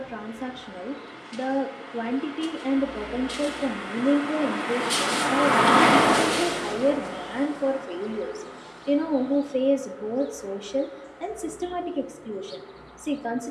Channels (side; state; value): both; identical; correlation 1.00